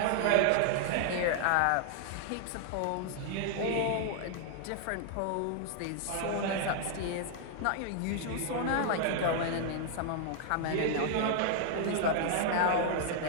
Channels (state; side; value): different; both; correlation -0.01